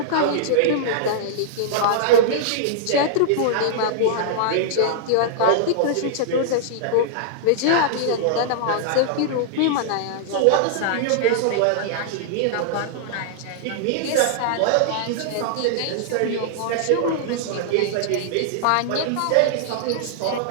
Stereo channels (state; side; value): different; both; correlation -0.01